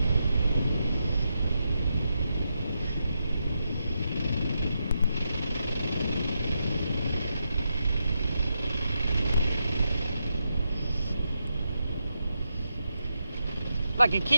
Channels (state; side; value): inverted; both; correlation -0.84